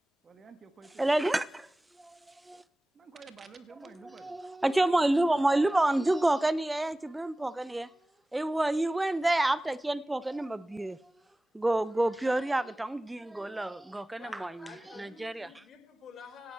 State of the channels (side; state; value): both; normal; correlation 0.98